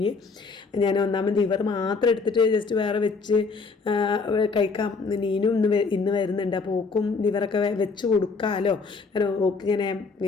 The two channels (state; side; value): quieter; right; 4.5 dB